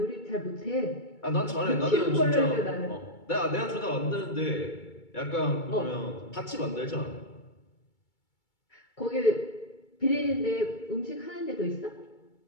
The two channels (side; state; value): right; late; 2.3 ms